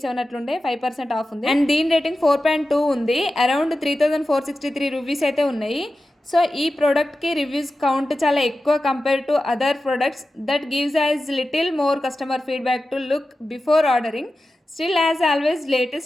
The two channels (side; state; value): both; normal; correlation 0.93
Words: అట్లుండే, 5% ఆఫ్ ఉంది. అండ్ దీని రేటింగ్ 4.2 ఉంది. అరౌండ్ 3463 రూపీస్ అయితే ఉన్నాయి. సో ఈ ప్రోడక్ట్కి రివ్యూస్ కౌంట్ చాలా ఎక్కువ compare to other products. That gives as little more customer feedback to look before ordering. Still as always